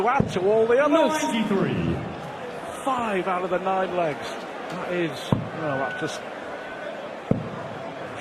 add to all the others. 93. 5 out of the 9 legs. That is, well, that's just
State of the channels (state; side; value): identical; both; correlation 1.00